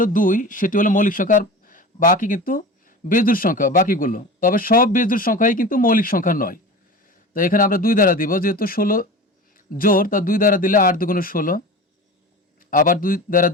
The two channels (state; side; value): normal; both; correlation 0.33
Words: 2, সেটি হলো মৌলিক সংখ্যা, আর বাকি কিন্তু বেজোড় সংখ্যা বাকিগুলো। তবে সব বেজোড় সংখ্যাই কিন্তু মৌলিক সংখ্যা নয়। তো এখানে আমরা 2 দ্বারা দিব, যেহেতু 16 জোড়, তা 2 দ্বারা দিলে 8 দুগুণে 16, আবার 2 দ্বারা